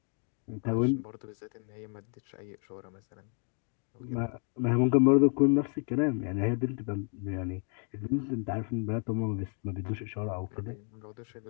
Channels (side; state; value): right; quieter; 39.1 dB